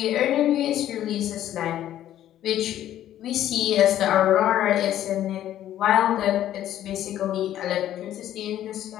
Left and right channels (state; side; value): quieter; right; 12.1 dB